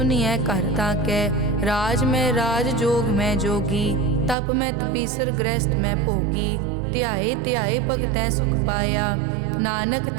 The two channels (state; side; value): drops out; left; at 4.4 s